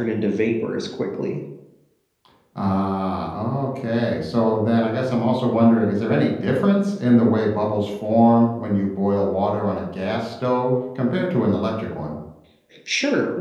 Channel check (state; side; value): identical; both; correlation 1.00